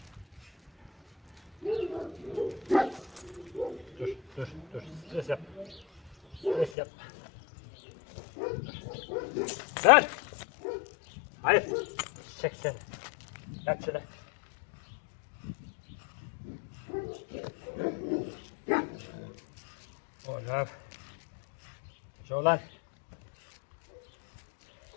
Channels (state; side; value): drops out; right; at 6.7 s